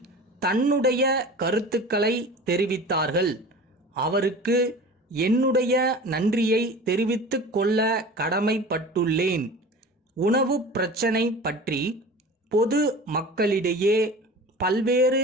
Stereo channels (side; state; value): both; normal; correlation 0.38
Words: தன்னுடைய கருத்துக்களை தெரிவித்தார்கள். அவருக்கு என்னுடைய நன்றியை தெரிவித்துக் கொள்ள கடமைப்பட்டுள்ளேன். உணவு பிரச்சனை பற்றி பொது மக்களிடையே பல்வேறு